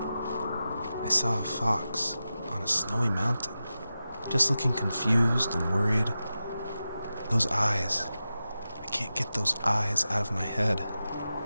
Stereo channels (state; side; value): inverted; both; correlation -0.92